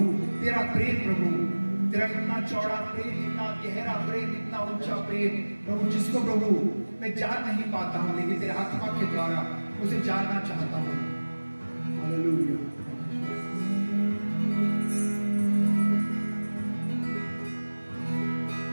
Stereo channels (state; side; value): inverted; both; correlation -1.00